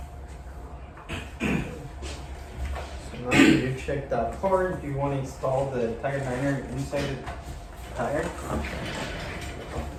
Now you check that part, you want to install the tire liner inside the tire.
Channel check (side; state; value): both; identical; correlation 1.00